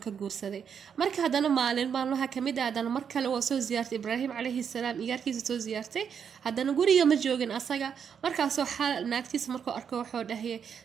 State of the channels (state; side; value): quieter; left; 7.4 dB